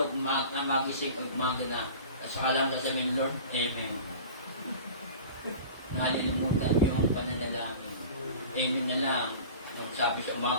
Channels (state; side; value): inverted; both; correlation -0.38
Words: magising, umaga na. Saka lang sasabihin, Lord, Amen. Nalilimutan yung pananalangin. Amen na lang. Magsabi sa